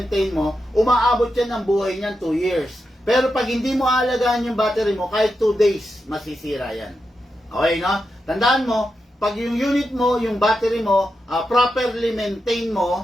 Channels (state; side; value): normal; both; correlation 0.87